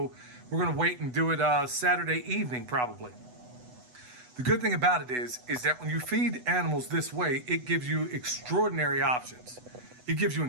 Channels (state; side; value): late; left; 8.1 ms